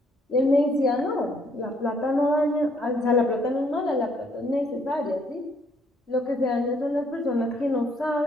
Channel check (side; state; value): both; normal; correlation 0.67